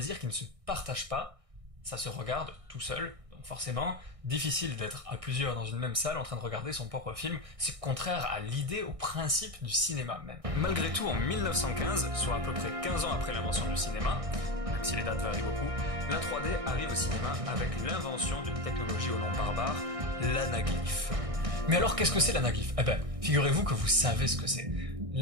qui ne se partage pas. Ça se regarde tout seul, donc forcément, difficile d'être à plusieurs dans une même salle en train de regarder son propre film, c'est contraire à l'idée, au principe du cinéma même. Malgré tout, en 1915, soit à peu près 15 ans après l'invention du cinéma, même si les dates varient beaucoup, la 3D arrive au cinéma avec l'invention d'une technologie au nom barbare, l'anaglyphe. Mais alors qu'est-ce que c'est l'anaglyphe? Eh ben, figurez-vous que vous savez ce que c'est.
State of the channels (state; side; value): late; left; 1.6 ms